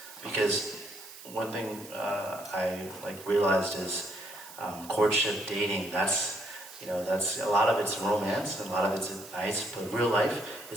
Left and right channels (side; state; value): right; noise; hiss, 16 dB below the sound